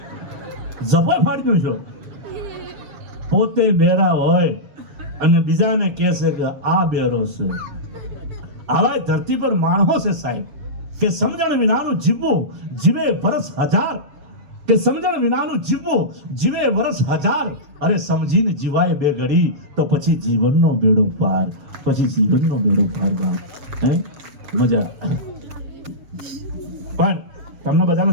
જબર ફાડ્યો છો. પોતે બેરા હોય અને બીજાને કહેશે કે આ બેરો છે. આવા ધરતી પર માણસો છે સાહેબ કે સમજણ વિનાનું જીવવું જીવે વર્ષ હજાર, કે સમજણ વિનાનું જીવવું જીવે વર્ષ હજાર. અરે સમજીને જીવાય બે ઘડી તો પછી જીવનનો બેડો પાર, પછી જીવનનો બેડો પાર. ગામ હે મજા. પણ તમને બધાને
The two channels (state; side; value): late; left; 7.2 ms